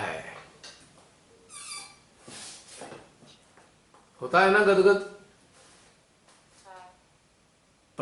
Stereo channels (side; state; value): both; identical; correlation 1.00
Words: होता है ना गदगद,